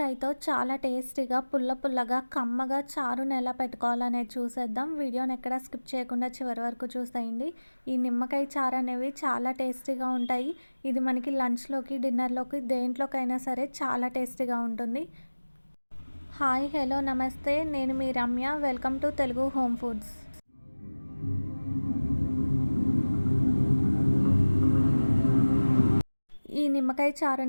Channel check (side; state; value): both; inverted; correlation -1.00